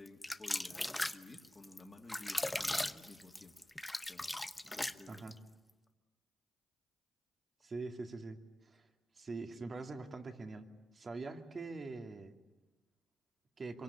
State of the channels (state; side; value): normal; both; correlation 0.95